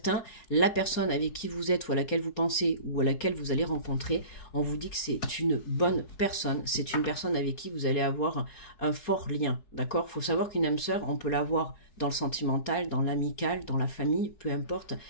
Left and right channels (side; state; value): right; late; 4.3 ms